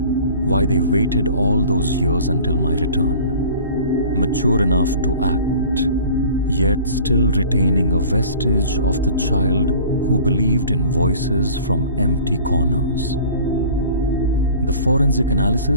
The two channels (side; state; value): both; inverted; correlation -0.45